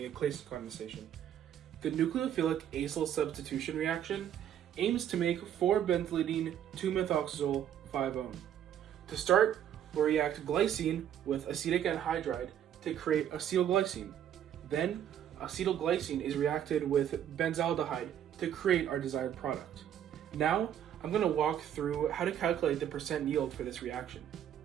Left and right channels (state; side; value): quieter; left; 10.0 dB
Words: a Claisen condensation. The nucleophilic acyl substitution reaction aims to make 4-benzylidene 2-methoxazole 5-one. To start, we'll react glycine with acetic anhydride to create acetylglycine. Then, acetylglycine is reacted with benzaldehyde to create our desired product. Now, I'm going to walk through how to calculate the percent yield for this reaction.